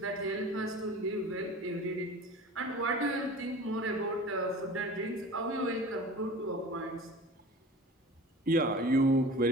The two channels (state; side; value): normal; both; correlation 0.39